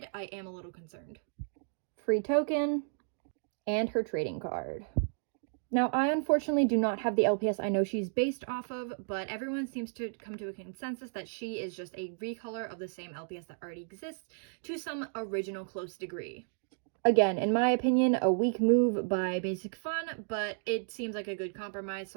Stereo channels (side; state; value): left; silent; digital silence